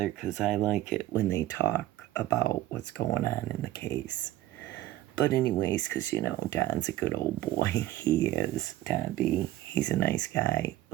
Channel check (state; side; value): quieter; left; 14.9 dB